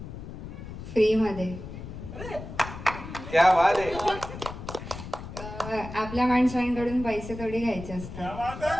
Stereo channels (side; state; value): left; noise; rumble, 11 dB below the sound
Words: फ्री मध्ये क्या बात आहे आपल्या माणसांकडून पैसे थोडी घ्यायचे असतात.